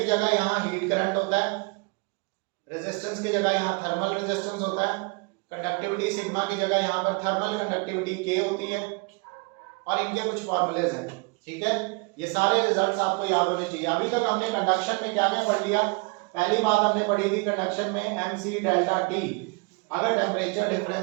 जगह यहाँ हीट करंट होता है, रेजिस्टेंस की जगह यहाँ थर्मल रेजिस्टेंस होता है, कंडक्टिविटी सिग्मा की जगह यहाँ पर थर्मल कंडक्टिविटी K होती है, और इनके कुछ फॉर्मूलेज हैं। ठीक है, ये सारे रिजल्ट्स आपको याद होने चाहिए। अभी तक हमने कंडक्शन में क्या क्या पढ़ लिया? पहली बात हमने पढ़ी थी कंडक्शन में MC डेल्टा T, अगर टेम्परेचर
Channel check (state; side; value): quieter; left; 30.2 dB